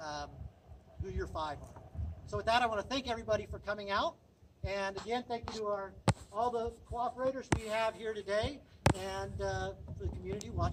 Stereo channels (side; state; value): both; identical; correlation 1.00